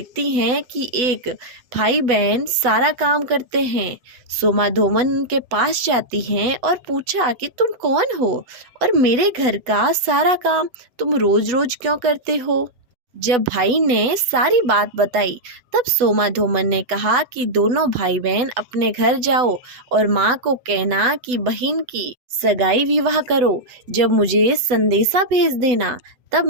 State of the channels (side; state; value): left; late; 8.0 ms